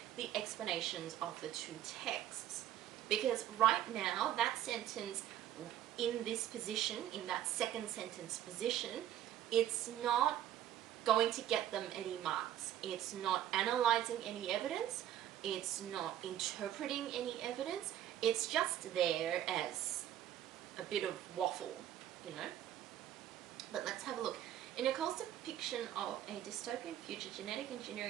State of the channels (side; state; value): left; quieter; 11.6 dB